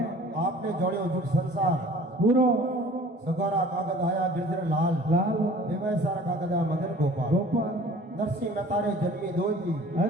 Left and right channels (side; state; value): both; normal; correlation 0.48